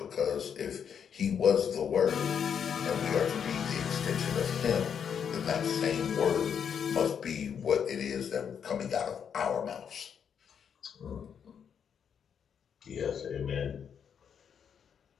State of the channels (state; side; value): quieter; right; 7.6 dB